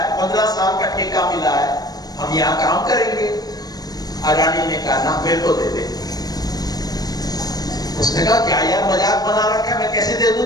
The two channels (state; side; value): late; right; 0.19 ms